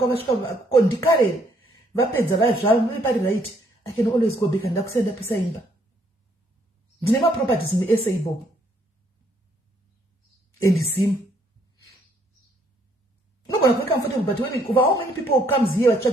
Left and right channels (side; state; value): both; normal; correlation 0.68